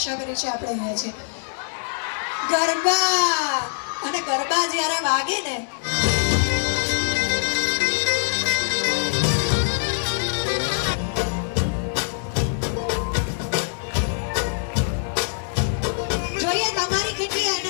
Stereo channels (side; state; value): right; silent; digital silence